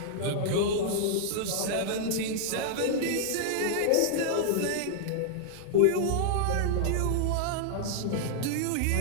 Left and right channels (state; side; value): different; both; correlation -0.01